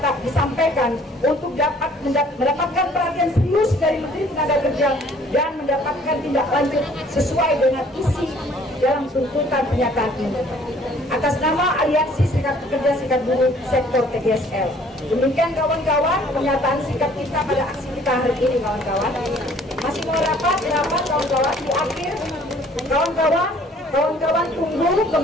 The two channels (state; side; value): normal; both; correlation 0.57